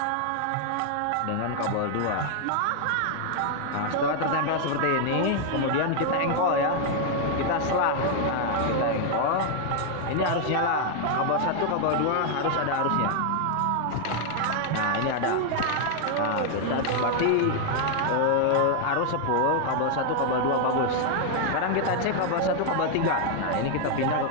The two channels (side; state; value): both; different; correlation 0.00